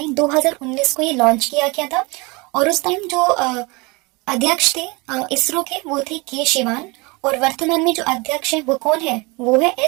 2019 को ये लॉन्च किया गया था और उस टाइम जो अध्यक्ष थे इसरो के वो थे के शिवान और वर्तमान में जो अध्यक्ष है वो कौन है? वो है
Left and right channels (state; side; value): quieter; left; 26.4 dB